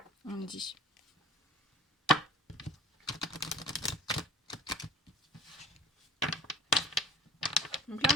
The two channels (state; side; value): normal; both; correlation 0.46